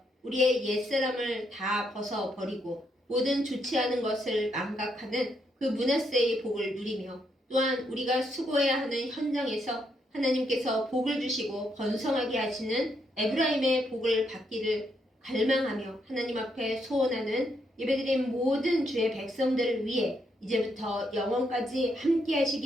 우리의 옛사람을 다 벗어버리고 모든 좋지 않은 것을 망각하는 그 므낫세의 복을 누리며 또한 우리가 수고해야 하는 현장에서 하나님께서 복을 주시고 번성하게 하시는 에브라임의 복을 받기를 갈망하며 하나님 앞에 소원하는 예배드린 모든 주의 백성들을 위해 이제부터 영원까지 함께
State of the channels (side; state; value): both; normal; correlation 0.77